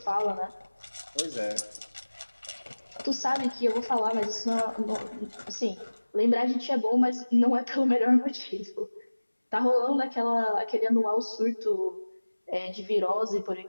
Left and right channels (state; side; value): inverted; both; correlation -1.00